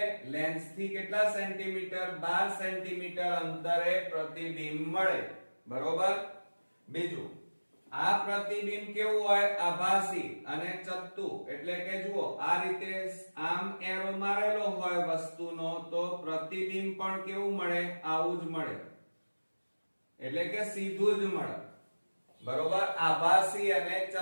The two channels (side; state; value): both; inverted; correlation -1.00